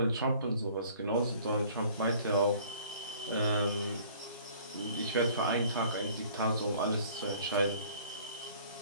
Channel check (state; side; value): inverted; both; correlation -0.53